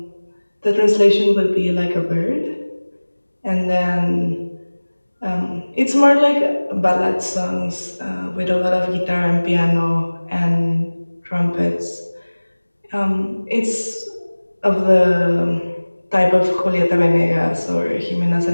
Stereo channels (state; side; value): inverted; both; correlation -1.00